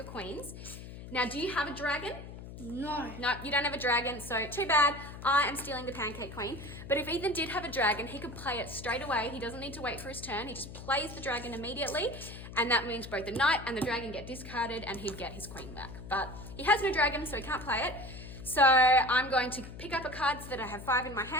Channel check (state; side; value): noise; left; hum, 12 dB below the sound